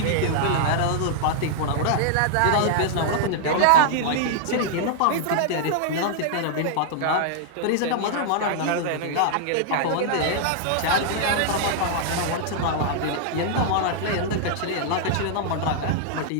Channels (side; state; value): both; different; correlation -0.01